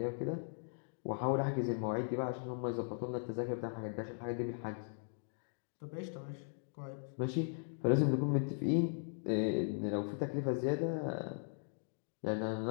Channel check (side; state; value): right; silent; digital silence